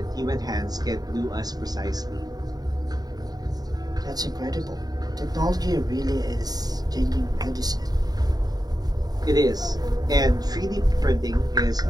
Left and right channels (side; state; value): left; late; 0.19 ms